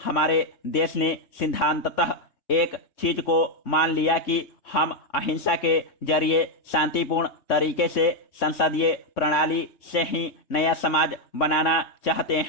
हमारे देश ने सिद्धांततः एक चीज को मान लिया कि हम अहिंसा के जरिए शांतिपूर्ण तरीके से संसदीय प्रणाली से ही नया समाज बनाना चाहते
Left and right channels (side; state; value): right; late; 3.6 ms